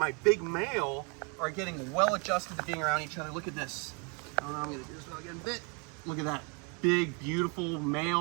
big male are getting well adjusted to being around each other. Look at this. I don't know, I'm gonna do this without getting bit. Look at that big, beautiful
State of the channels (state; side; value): quieter; left; 33.8 dB